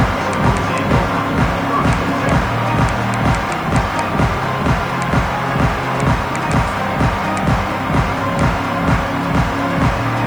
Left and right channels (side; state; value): left; noise; hiss, 26 dB below the sound